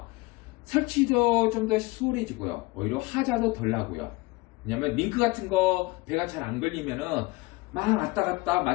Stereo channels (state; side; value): quieter; right; 22.8 dB